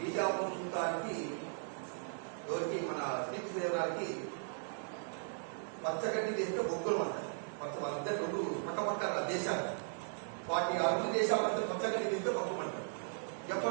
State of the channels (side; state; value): left; silent; digital silence